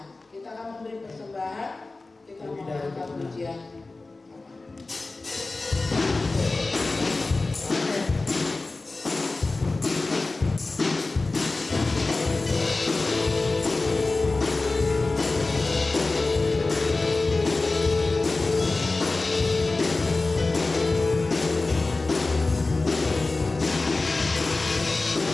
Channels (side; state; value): right; quieter; 3.4 dB